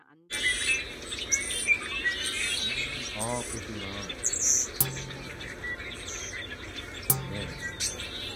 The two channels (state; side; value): identical; both; correlation 1.00